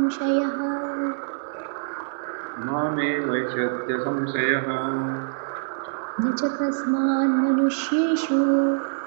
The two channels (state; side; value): silent; left; digital silence